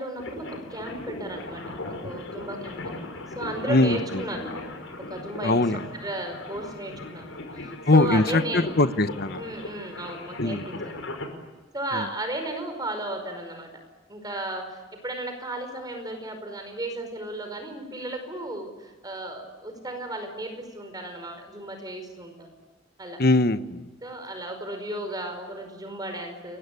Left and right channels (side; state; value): both; normal; correlation 0.41